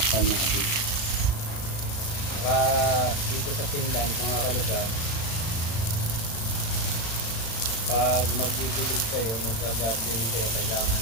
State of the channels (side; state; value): right; late; 35 ms